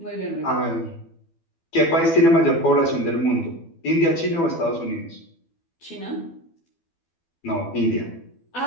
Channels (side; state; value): right; late; 12 ms